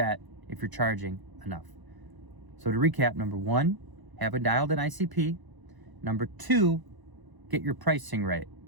if you're charging enough. So to recap, number 1, have a dialed in ICP. Number 2, get your pricing right.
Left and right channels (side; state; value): left; late; 1.0 ms